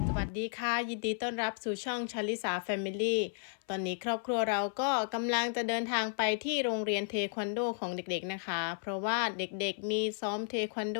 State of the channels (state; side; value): silent; right; 55 dB below the other